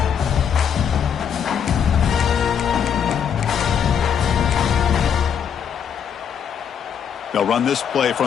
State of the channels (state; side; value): quieter; right; 7.8 dB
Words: They'll run this play